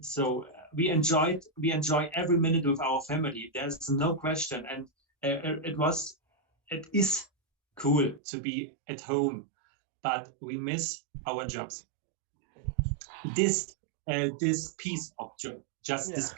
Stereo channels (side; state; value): left; drops out; at 8.2 s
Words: we enjoy every minute with our family. There's no question. And it is cool to be at home, but we miss our jobs. This piece of job, just this